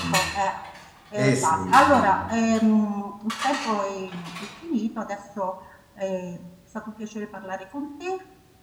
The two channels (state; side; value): identical; both; correlation 1.00